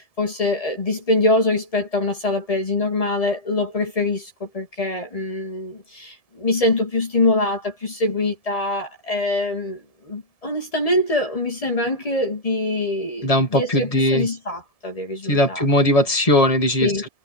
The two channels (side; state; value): right; late; 1.7 ms